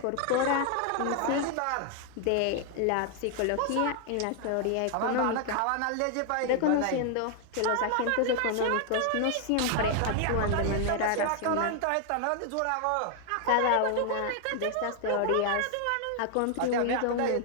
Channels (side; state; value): both; different; correlation 0.00